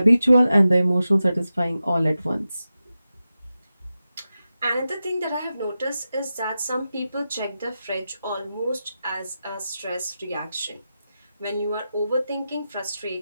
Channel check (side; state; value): both; inverted; correlation -0.92